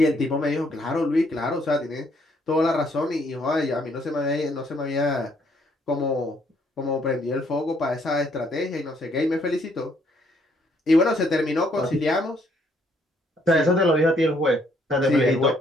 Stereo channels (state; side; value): normal; both; correlation 0.68